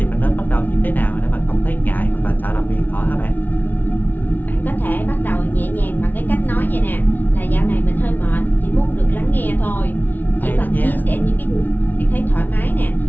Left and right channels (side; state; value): right; late; 0.083 ms